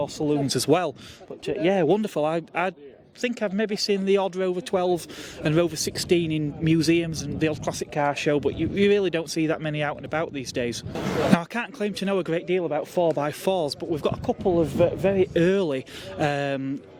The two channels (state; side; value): identical; both; correlation 1.00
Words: saloons as well. But yeah, wonderful. I think I've maybe seen the odd Rover 12 and Rover 16 in museums and the odd classic car show, but you really don't see that many out and about these days. Now, I can't claim to know a great deal about 4x4s, but we've got a couple of very early